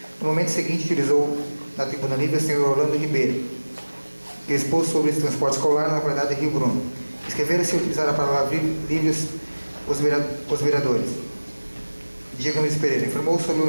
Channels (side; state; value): both; inverted; correlation -1.00